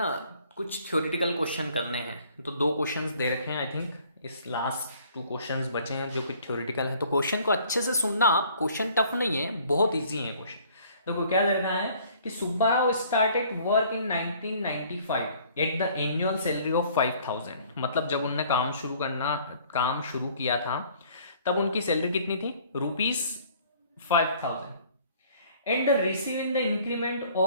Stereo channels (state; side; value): inverted; both; correlation -0.56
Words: कुछ थ्योरेटिकल क्वेश्चन करने हैं, तो 2 क्वेश्चंस दे रखे हैं। आई थिंक इस लास्ट 2 क्वेश्चंस बचे हैं जो कि थ्योरेटिकल है, तो क्वेश्चन को अच्छे से सुनना आप। क्वेश्चन टफ नहीं है, बहुत इजी है क्वेश्चन। देखो क्या दे रखा है कि Subbarao started work in 1995 at the annual salary of 5000। मतलब जब उनने काम शुरू किया था तब उनकी सैलरी कितनी थी, ₹5000, and receive in the increment